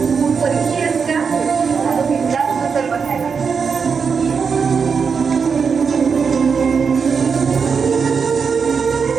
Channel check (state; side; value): quieter; left; 5.8 dB